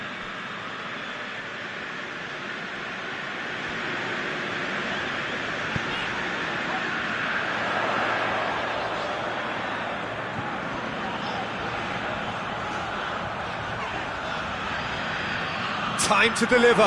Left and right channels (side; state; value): both; identical; correlation 1.00